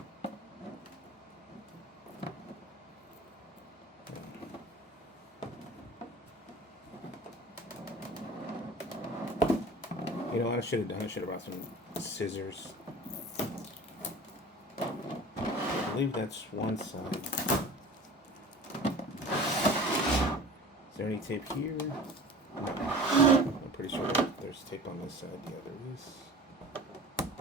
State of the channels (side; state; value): both; normal; correlation 0.40